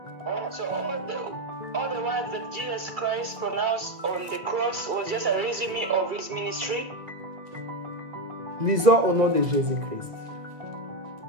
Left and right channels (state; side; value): late; left; 2.3 ms